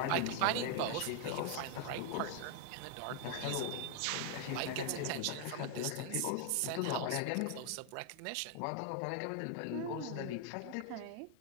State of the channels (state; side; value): different; both; correlation 0.00